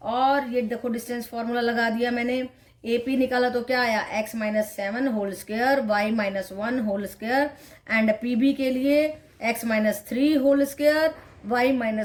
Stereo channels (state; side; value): identical; both; correlation 1.00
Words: और ये देखो डिस्टेंस फॉर्मूला लगा दिया मैंने. AP निकाला तो क्या आया, x minus 7 whole square y minus 1 whole square and PB के लिए x minus 3 whole square y